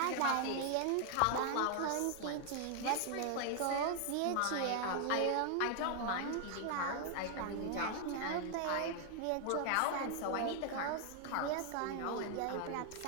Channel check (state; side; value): different; both; correlation 0.00